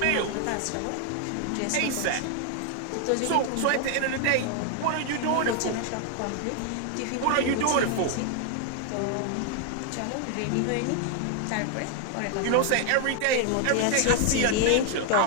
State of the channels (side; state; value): both; different; correlation 0.00